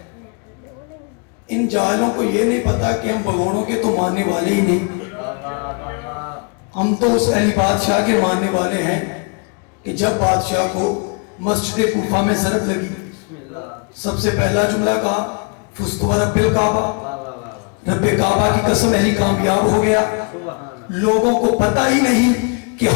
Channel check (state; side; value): quieter; right; 35.3 dB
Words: ان جاہلوں کو یہ نہیں پتا کہ ہم بگوڑوں کے تو ماننے والے ہی نہیں. ہم تو اس اہل بادشاہ کے ماننے والے ہیں کہ جب بادشاہ کو مسجد کوفہ میں ضرب لگی سب سے پہلا جملہ کہا فزت برب الکعبہ, رب کعبہ کی قسم اہلی کامیاب ہو گیا. لوگوں کو پتہ ہی نہیں کہ